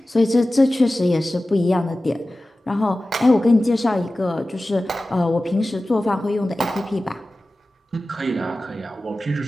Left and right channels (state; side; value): normal; both; correlation 0.96